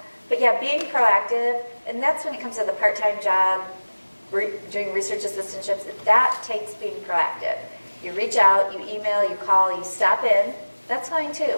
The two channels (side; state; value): both; inverted; correlation -1.00